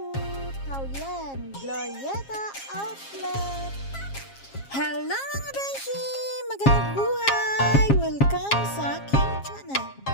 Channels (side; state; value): right; late; 7.4 ms